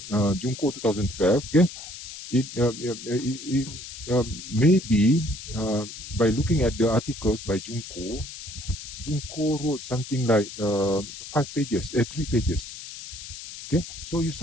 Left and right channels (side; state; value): left; noise; hiss, 12 dB below the sound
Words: 2012. Okay, it maybe by looking at the articles by Junko wrote something like 5 pages, 3 pages. Okay, so you